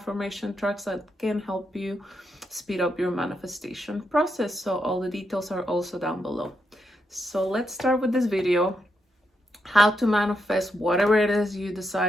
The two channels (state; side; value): normal; both; correlation 0.82